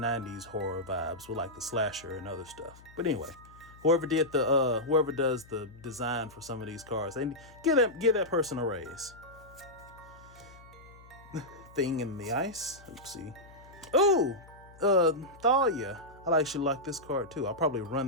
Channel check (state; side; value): noise; left; hum, 22 dB below the sound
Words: horror vibes with like the slasher and other stuff. But anyway, whoever does the design for some of these cards, they give that person a raise. thing in the ice. Oopsie. Ooh, Thalia. I actually like this card too. I'll probably